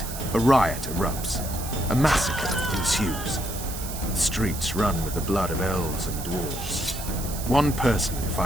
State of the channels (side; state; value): right; noise; hiss, 9 dB below the sound